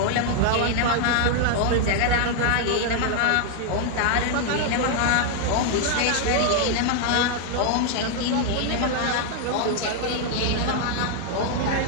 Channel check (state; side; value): different; both; correlation 0.00